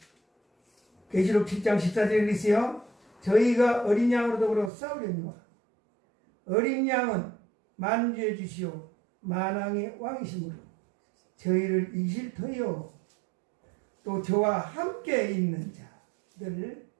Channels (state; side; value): drops out; left; at 4.7 s